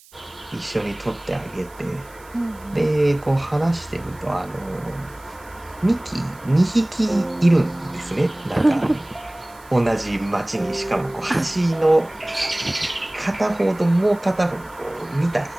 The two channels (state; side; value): noise; right; hiss, 26 dB below the sound